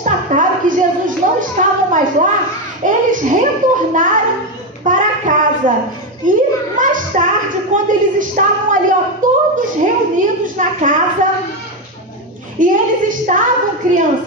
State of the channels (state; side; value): normal; both; correlation 0.10